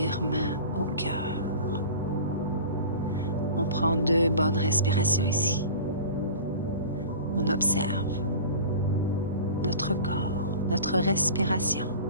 main au cœur. On prend 2 bonnes respirations ici. on observe notre corps, notre respiration.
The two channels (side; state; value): both; inverted; correlation -0.37